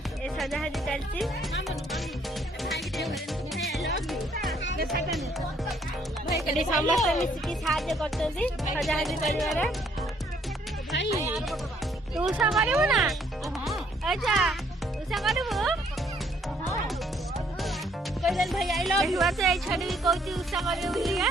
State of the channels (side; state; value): both; normal; correlation 0.66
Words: ये सजासजी चलती। समस्त मिसिकी साहाଯ୍य करछन्ती सजासजी करिवार। तू उषा करिबु ना? अच्छा उषा करिबु? कैलन भाई आई लव यू। बात ए छडी भी कहती उषा करिबु बोलिया।